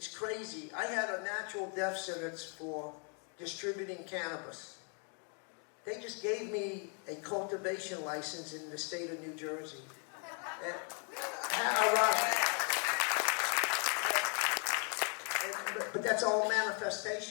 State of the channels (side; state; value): right; quieter; 39.9 dB